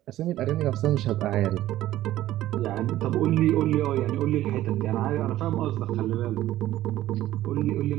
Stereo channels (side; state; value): left; quieter; 14.3 dB